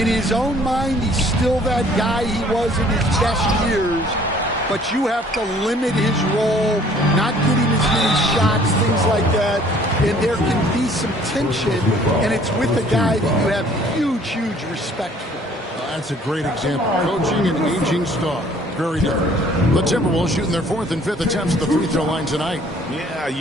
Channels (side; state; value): both; normal; correlation 0.57